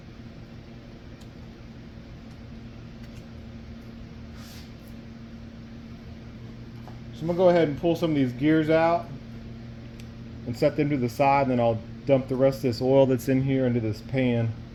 So I'm gonna go ahead and pull some of these gears out and set them to the side, and then I'll dump the rest of this oil that's in here into this pan.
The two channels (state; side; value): identical; both; correlation 1.00